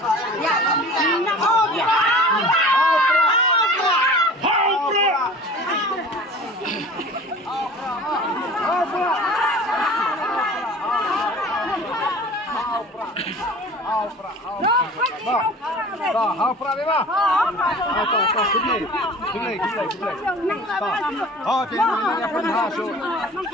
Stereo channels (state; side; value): normal; both; correlation 0.42